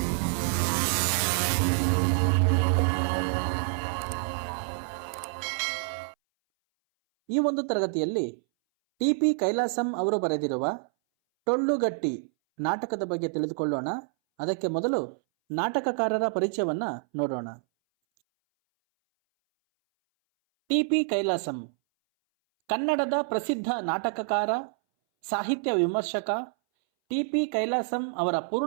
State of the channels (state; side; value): silent; left; 59 dB below the other